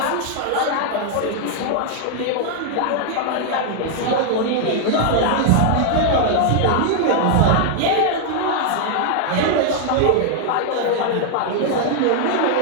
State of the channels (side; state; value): both; different; correlation 0.00